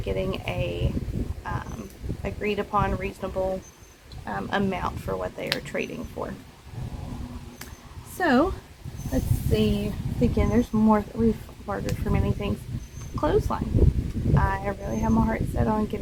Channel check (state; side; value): identical; both; correlation 1.00